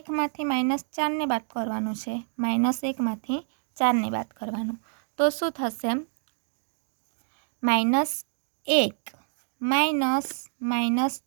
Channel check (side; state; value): left; silent; 60 dB below the other